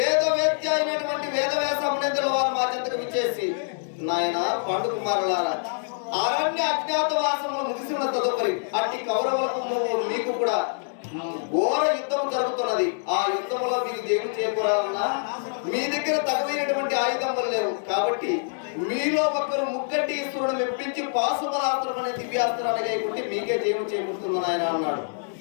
అయినటువంటి వేదవ్యాస మునీంద్రుల వారు మా చెంతకు విచ్చేసి, నాయన పండు కుమారులారా, అరణ్య అజ్ఞాతవాసములు ముగిసి ఉన్న తదుపరి అట్టి కౌరవులకు మీకు కూడా ఘోర యుద్ధం జరుగుతున్నది. ఆ యుద్ధంలో మీకు జయము చేకూరాలన్నా మీ దగ్గర తగవైనటువంటి ఆయుధములు లేవు. కాబట్టి మీలో ఒకరు ముక్కటి ఈశ్వరుడు మెప్పించి పాశుపరాస్త్రం అనే దివ్యాస్త్రాన్ని గైకుంటే మీకే జయము చేకూరుతుంది ఆయన అన్నాడు.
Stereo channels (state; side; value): silent; right; digital silence